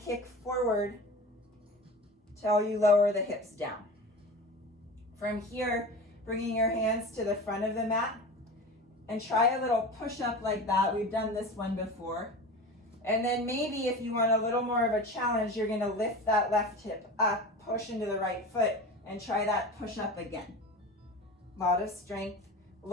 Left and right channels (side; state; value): both; normal; correlation 0.32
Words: forward till you lower the hips down. From here, bringing your hands to the front of the mat and try a little push-up like that. We've done this one before. And then maybe if you want a little more of a challenge, you're gonna lift that left hip up, push into the right foot, and try that push-up again. A lot of strength.